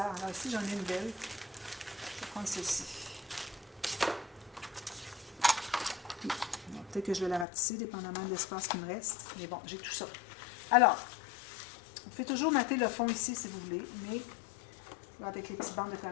Alors, ici, j'en ai une belle. Je vais prendre celle-ci. Peut-être que je vais la rapetisser, dépendamment de l'espace qui me reste. Mais bon, j'ai tout ça. Alors, vous pouvez toujours mater le fond ici si vous voulez, mais là, avec les petites bandes de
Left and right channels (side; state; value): right; drops out; at 7.5 s